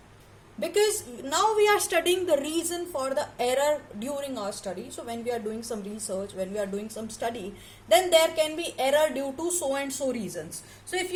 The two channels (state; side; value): identical; both; correlation 1.00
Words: Because now we are studying the reason for the error during our study. So when we are doing some research, when we are doing some study, then there can be error due to so and so reasons. So if